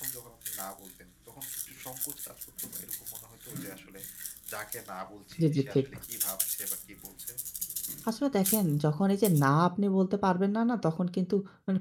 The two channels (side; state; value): both; identical; correlation 1.00